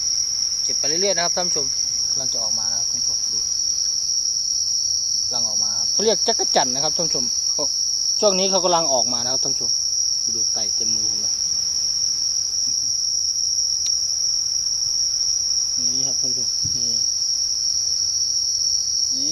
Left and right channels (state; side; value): identical; both; correlation 1.00